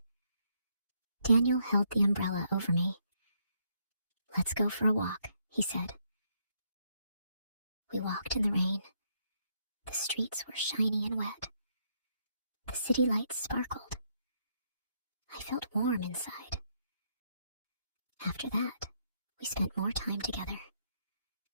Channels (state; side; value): inverted; both; correlation -0.74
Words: Daniel held the umbrella over me. "Let's go for a walk," he said. We walked in the rain. The streets were shiny and wet. The city lights sparkled. I felt warm inside. After that, we spent more time together.